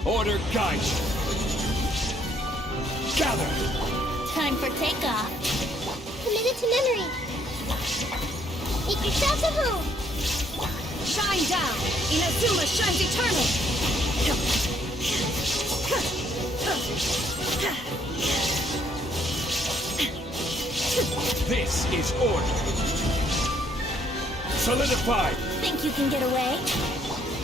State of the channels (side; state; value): both; normal; correlation 0.67